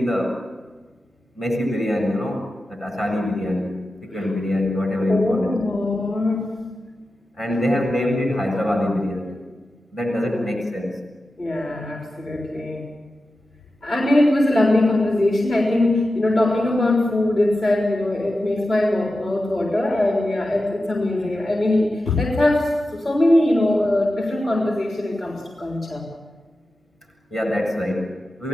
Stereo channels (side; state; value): both; normal; correlation 0.92